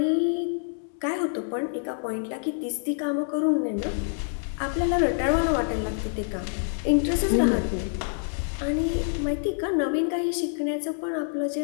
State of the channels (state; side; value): silent; right; 60 dB below the other